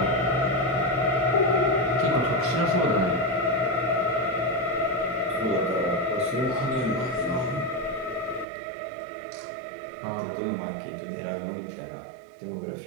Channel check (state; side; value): drops out; left; at 8.5 s